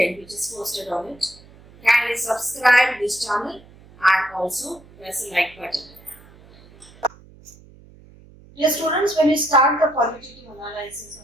which is posted on it, kindly subscribe this channel and also press the like button. Dear students, when you start the qualitative analysis of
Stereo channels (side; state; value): right; noise; hum, 24 dB below the sound